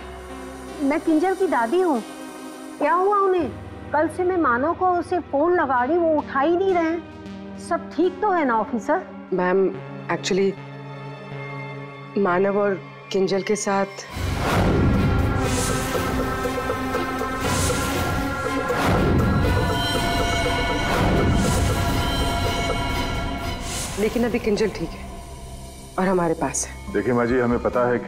मैं किंजल की दादी हूँ। क्या हुआ उन्हें? कल से मैं मानव को उसे फोन लगा रही, वो उठा ही नहीं रहे। सब ठीक तो है ना ऑफिसर? मैम, एक्चुअली मानव और किंजल के साथ लेकिन अभी किंजल ठीक है और हमारे पास है। देखिए माँ जी, हमें पता है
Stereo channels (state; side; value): identical; both; correlation 1.00